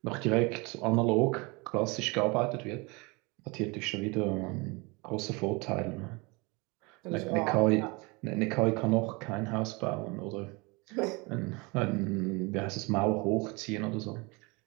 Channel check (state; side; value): quieter; left; 27.3 dB